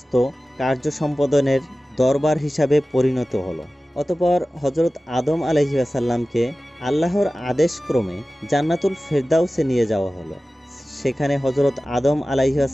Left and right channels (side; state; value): both; normal; correlation 0.96